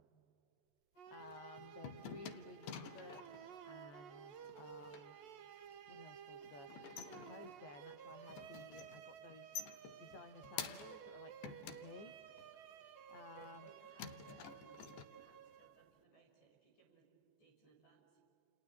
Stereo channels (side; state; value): right; late; 15 ms